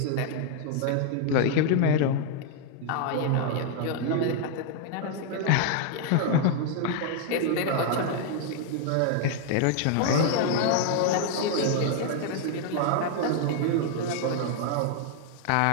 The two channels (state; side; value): different; both; correlation 0.00